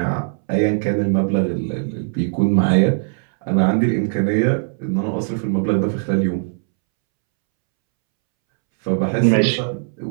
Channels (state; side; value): silent; left; 66 dB below the other